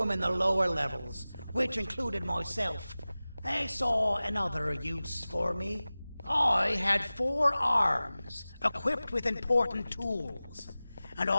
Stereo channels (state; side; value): inverted; both; correlation -0.97